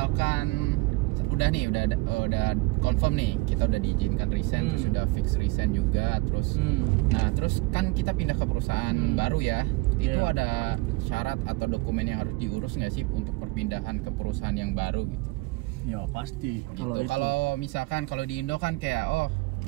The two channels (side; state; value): left; quieter; 23.3 dB